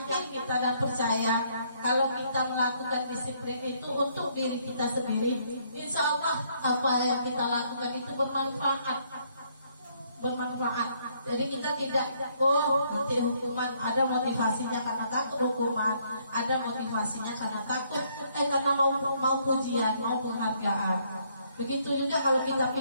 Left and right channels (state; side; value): inverted; both; correlation -0.68